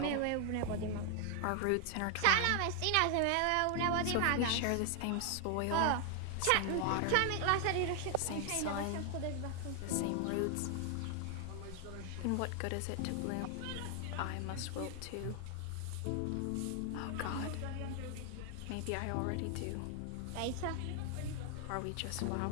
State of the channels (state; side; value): different; both; correlation 0.00